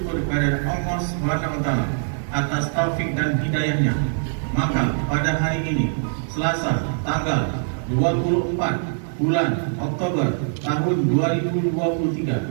kepada Allah SWT atas taufik dan hidayahnya, maka pada hari ini Selasa tanggal 24 bulan Oktober tahun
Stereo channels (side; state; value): left; silent; 59 dB below the other